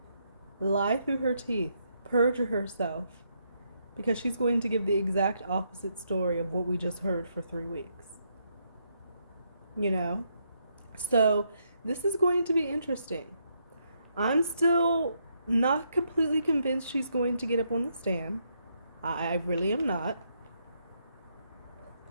Lie through her teeth. Perjure herself. Because she's going to give the exact opposite story of what we just heard for 3 weeks. You know? So, this is going to be interesting. I'm still not completely convinced she's going to get up on the stand. I really am not.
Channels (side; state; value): both; inverted; correlation -0.76